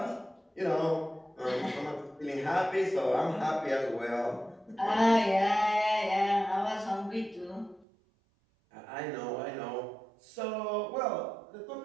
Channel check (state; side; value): drops out; left; at 7.9 s